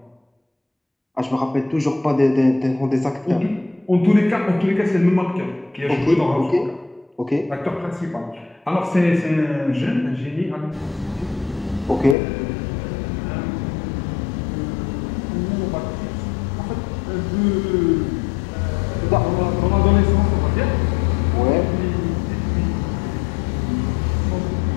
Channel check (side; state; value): right; drops out; at 12.2 s